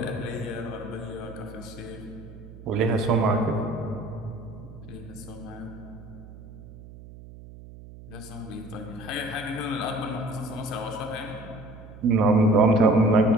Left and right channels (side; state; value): right; noise; hum, 17 dB below the sound